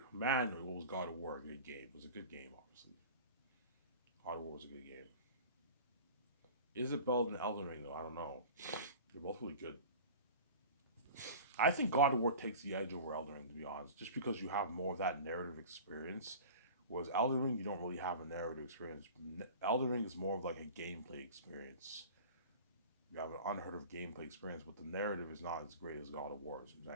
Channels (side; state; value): both; inverted; correlation -0.38